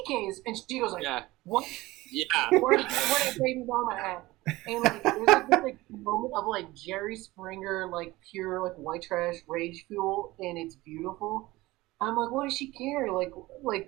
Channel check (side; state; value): left; quieter; 19.4 dB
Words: And she goes yeah. What? Yeah. Where did baby mama at? And there's this moment of Jerry Springer, pure white trash rage fuel, and it's beautiful. I'm like, what does she care?